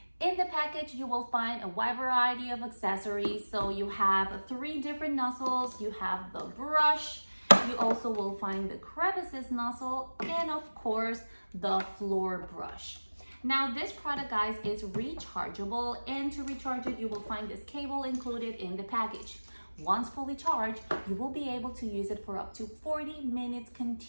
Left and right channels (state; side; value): inverted; both; correlation -1.00